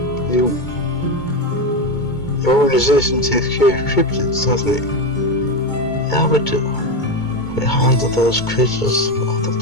The organization takes care of cryptids, doesn't it? Yeah, we do. behind those creatures of the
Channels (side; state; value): right; late; 2.2 ms